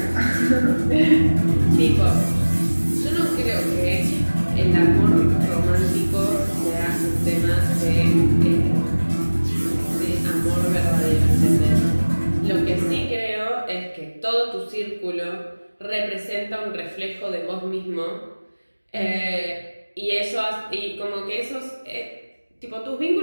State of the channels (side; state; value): both; inverted; correlation -1.00